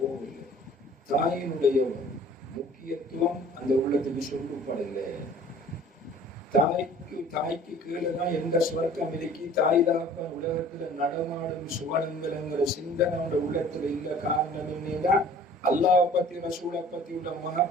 தாயினுடைய முக்கியத்துவம் அந்த உள்ளத்துக்கு சொல்லப்படலை. தாய்க்கு கீழே தான் எந்த சுவர்க்கம் இருக்கி தாய் தாப்பன் உலகத்துல நடமாடும் சுவனங்கிற சிந்தனை அவனோட உள்ளத்துல இல்ல. காரணம் என்னன்னா அல்லாஹ் பத்தி ரசூலை பத்தி உள்ள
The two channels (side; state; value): both; normal; correlation 0.49